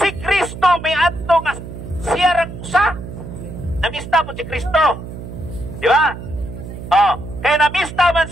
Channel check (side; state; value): right; noise; hum, 11 dB below the sound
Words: Kristo may adto nga siya raksa. Namista mo si Kristo. Di ba? Kaya namista man